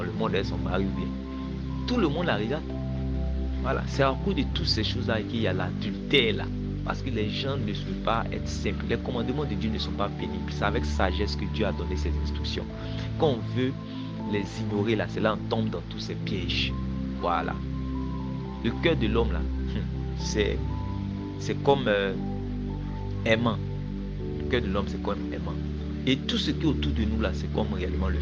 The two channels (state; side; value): identical; both; correlation 1.00